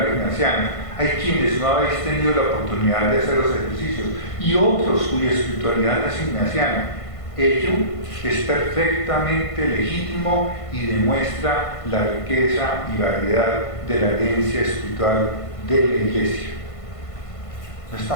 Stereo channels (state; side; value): late; right; 1.5 ms